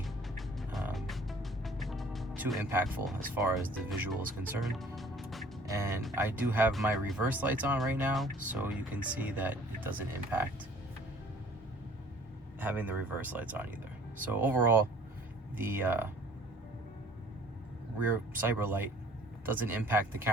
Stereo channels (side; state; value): both; normal; correlation 0.54